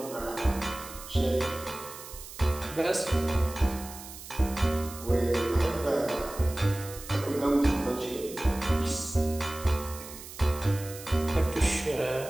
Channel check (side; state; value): right; noise; hiss, 14 dB below the sound